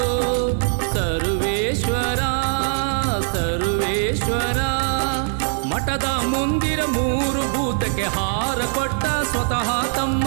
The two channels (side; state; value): left; silent; digital silence